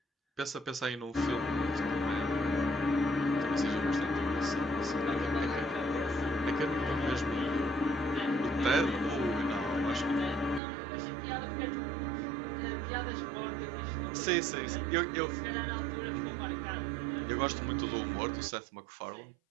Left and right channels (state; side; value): drops out; left; at 10.6 s